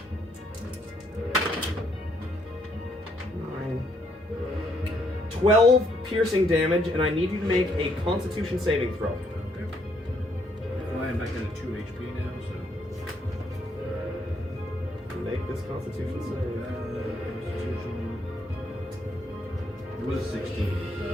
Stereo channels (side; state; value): both; normal; correlation 0.72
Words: 12 piercing damage, and I need you to make a Constitution saving throw. Okay. Well, I'm back down to 2 HP now, so. Make this Constitution save. Constitution. It was 16.